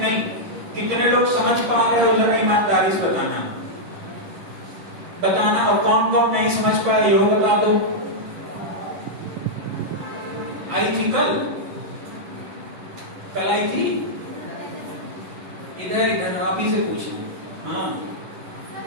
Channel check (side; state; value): left; late; 10 ms